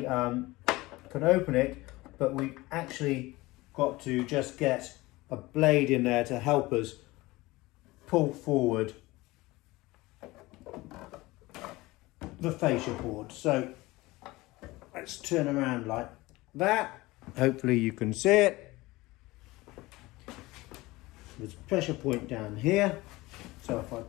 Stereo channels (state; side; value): quieter; right; 20.4 dB